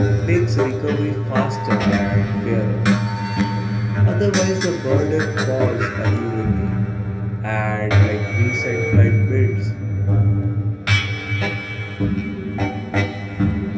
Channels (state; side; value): identical; both; correlation 1.00